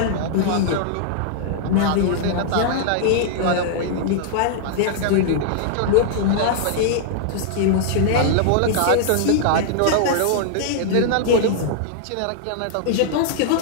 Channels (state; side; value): different; both; correlation -0.01